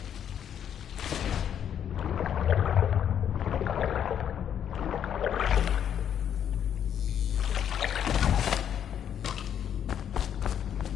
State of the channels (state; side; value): quieter; right; 9.2 dB